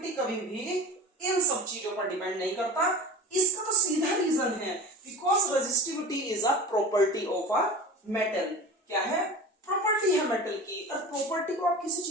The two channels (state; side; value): normal; both; correlation 0.34